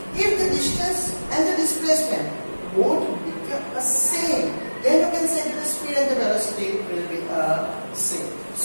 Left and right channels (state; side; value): inverted; both; correlation -1.00